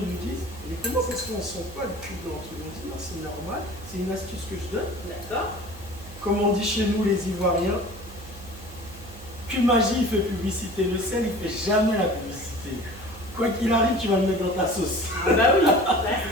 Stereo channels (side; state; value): right; noise; hum, 17 dB below the sound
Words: nous disent, mais comment ça se fait, on ne sent pas le cube dans le truc? On dit non, c'est normal, c'est une astuce que je donne. D'accord. Comme on dit chez nous les Ivoiriens, que magie il fait publicité, le sel il fait jamais la publicité. Quoi qu'il arrive, tu vas le mettre dans ta sauce. Ah bah oui, là